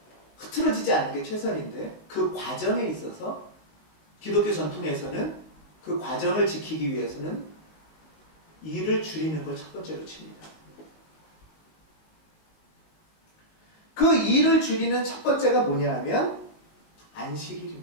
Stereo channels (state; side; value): late; right; 19 ms